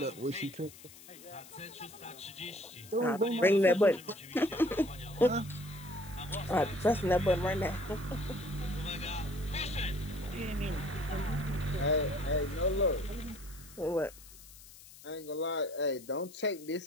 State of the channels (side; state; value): left; noise; hiss, 19 dB below the sound